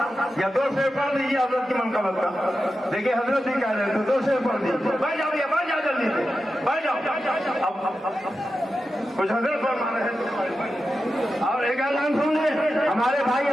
या 2 शेर पढ़ दीजिए हजरत की मनकबत का। देखिए हजरत ही कह रहे थे 2 शेर पढ़ दीजिए। बैठ जाओ भैया, बैठ जाओ जल्दी से, बैठ जाओ। अब कुछ हजरत फरमा रहे हैं। और एक ऐलान सुन ले, हमारे भाई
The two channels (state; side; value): normal; both; correlation 0.91